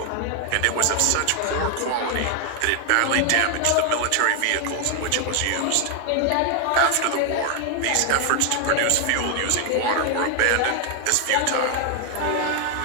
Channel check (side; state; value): both; different; correlation 0.00